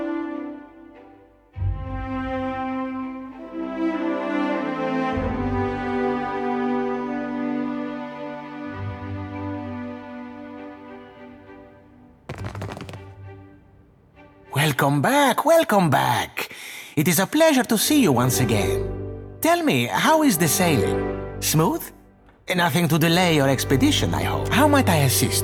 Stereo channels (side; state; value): both; identical; correlation 1.00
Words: Welcome back, welcome back. It is a pleasure to see you once again. Tell me, how is the sailing? Smooth? Nothing to delay your expedition, I hope. How might I